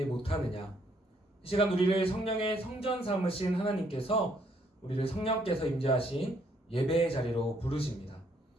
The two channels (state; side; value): normal; both; correlation 0.69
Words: 못하느냐. 이 시간 우리를 성령의 성전 삼으신 하나님께서 우리를 성령께서 임재하신 예배의 자리로 부르십니다.